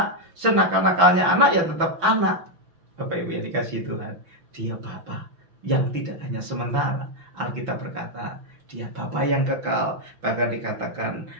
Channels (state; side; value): late; left; 5.9 ms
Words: senakal-nakalnya anak ya tetap anak. Bapak Ibu yang dikasihi Tuhan, dia Bapa yang tidak hanya sementara. Alkitab berkata dia Bapa yang kekal, bahkan dikatakan